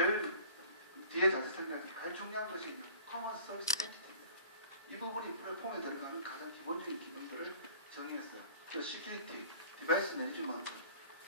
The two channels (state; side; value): inverted; both; correlation -0.45